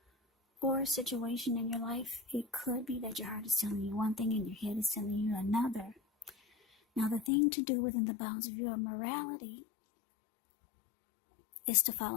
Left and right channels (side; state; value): right; drops out; at 7.3 s